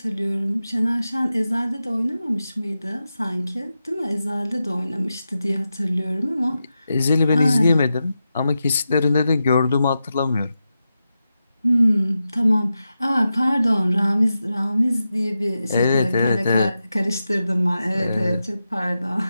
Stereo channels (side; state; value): both; inverted; correlation -0.90